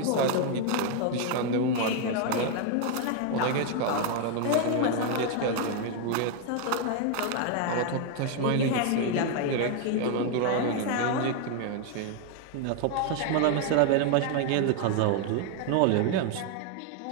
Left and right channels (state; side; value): different; both; correlation 0.00